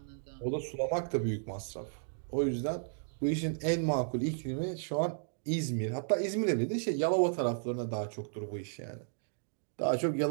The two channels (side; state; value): left; silent; digital silence